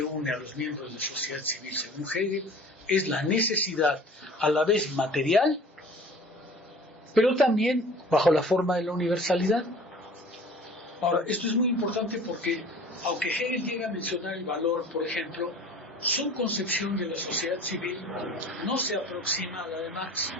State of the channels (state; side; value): normal; both; correlation 0.45